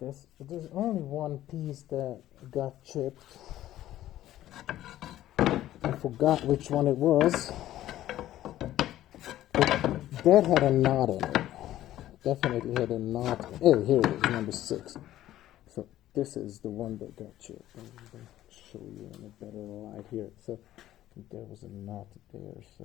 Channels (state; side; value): quieter; right; 13.6 dB